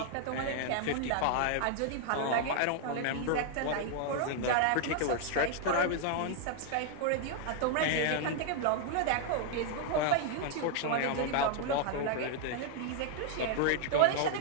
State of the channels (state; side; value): different; both; correlation 0.00